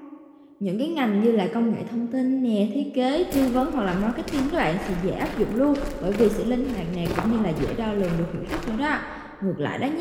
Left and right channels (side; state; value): both; identical; correlation 1.00